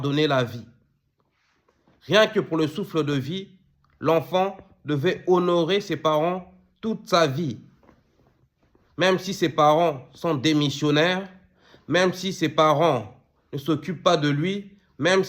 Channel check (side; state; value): both; identical; correlation 1.00